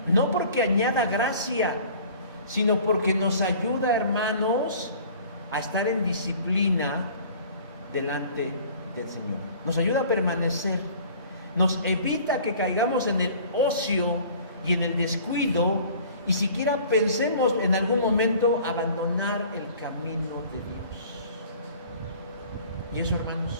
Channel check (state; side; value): inverted; both; correlation -0.48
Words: No porque añada gracia, sino porque nos ayuda, hermanos, a estar en disciplina delante del Señor. Nos ayuda a permanecer, nos evita que caigamos en el ocio y en el descuido y siquiera pensemos en algún momento abandonar el camino de Dios. Y eso,